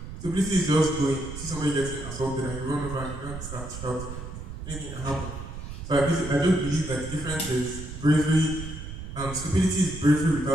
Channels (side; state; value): right; noise; rumble, 9 dB below the sound